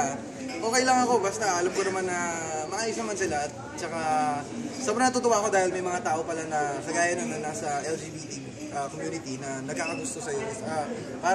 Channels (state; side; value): identical; both; correlation 1.00